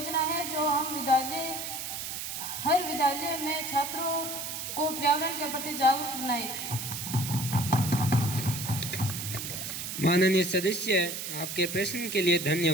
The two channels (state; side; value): noise; right; hiss, 5 dB below the sound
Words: है जो हर विद्यालय में छात्रों को पर्यावरण के प्रति जागरूक बनाए? माननीय सदस्य, आपके प्रश्न के लिए